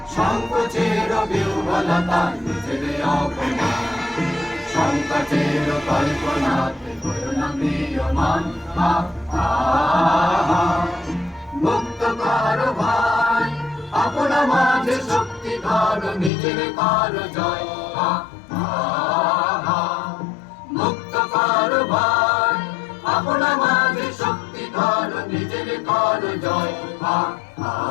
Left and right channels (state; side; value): drops out; right; at 16.3 s